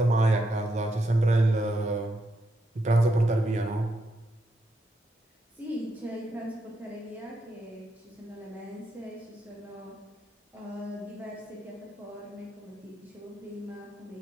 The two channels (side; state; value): both; normal; correlation 0.81